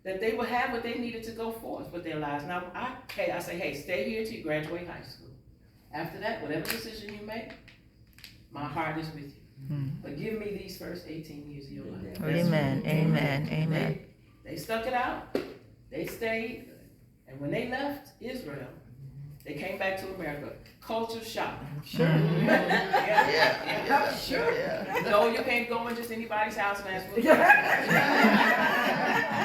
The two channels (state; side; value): identical; both; correlation 1.00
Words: That they would have what they needed to go forth with their lives. Now, I say, hey, stay here till you graduate high school. After that, whatever decision you make, my heart is with you. But give me these first 18 years of your life. Amen. They stuck it out. They stayed. And when they left Israel, they came back to America. Culture shock. Sure. Sure. No, you can't go in just anybody's house and ask for